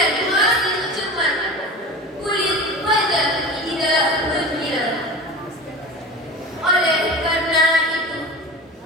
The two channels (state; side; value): normal; both; correlation 0.33